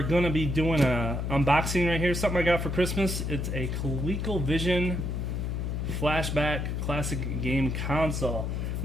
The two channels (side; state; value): left; noise; hum, 2 dB below the sound